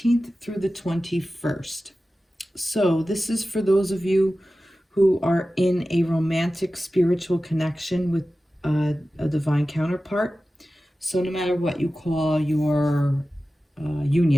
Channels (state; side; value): normal; both; correlation 0.95